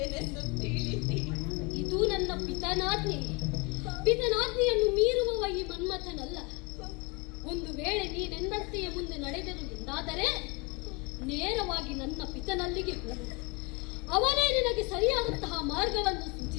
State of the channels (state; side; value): quieter; right; 28.8 dB